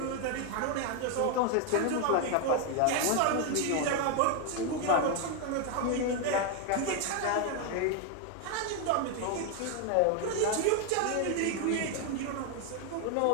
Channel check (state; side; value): different; both; correlation 0.01